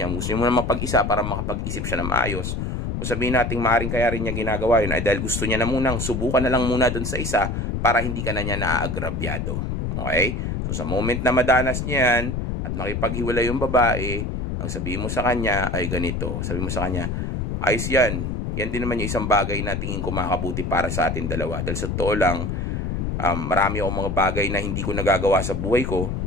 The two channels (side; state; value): left; noise; rumble, 2 dB below the sound